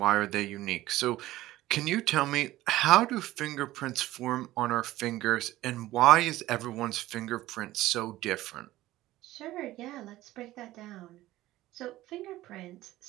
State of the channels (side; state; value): left; quieter; 16.1 dB